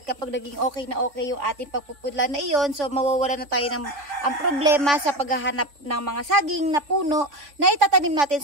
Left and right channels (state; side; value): late; left; 3.6 ms